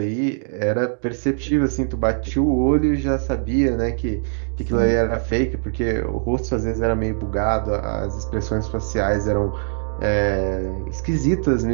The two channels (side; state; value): left; silent; digital silence